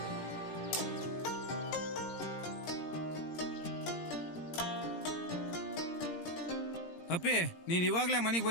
ಅಪ್ಪಿ ನೀನ್ ಇವಾಗ್ಲೇ ಮನೆಗೆ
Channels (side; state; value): right; late; 17 ms